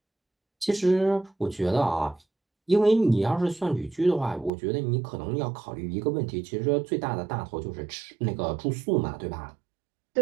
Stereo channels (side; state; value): left; drops out; at 4.5 s